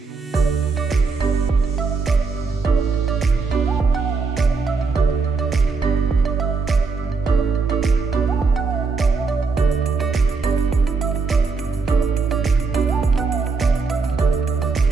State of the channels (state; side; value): quieter; left; 4.5 dB